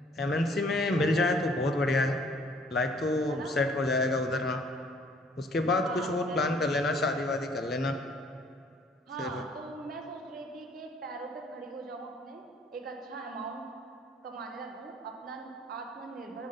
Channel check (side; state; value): both; normal; correlation 0.59